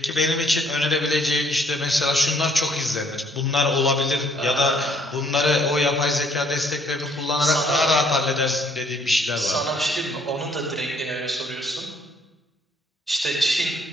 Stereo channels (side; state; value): both; normal; correlation 0.64